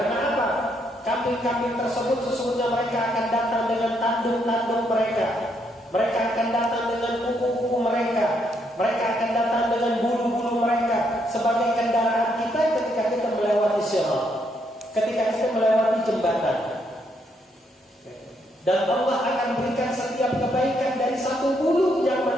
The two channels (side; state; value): both; normal; correlation 0.75